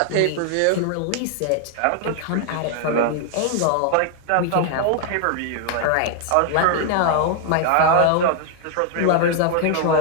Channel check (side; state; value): both; different; correlation 0.00